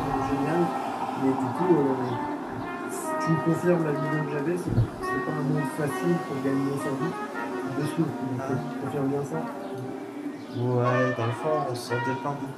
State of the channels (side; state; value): both; identical; correlation 1.00